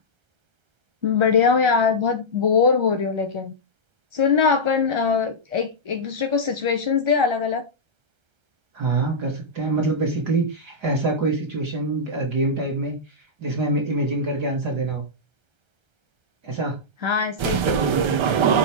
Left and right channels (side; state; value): left; late; 1.3 ms